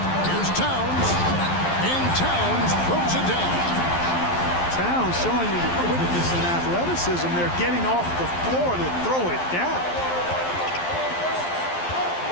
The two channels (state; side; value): late; right; 11 ms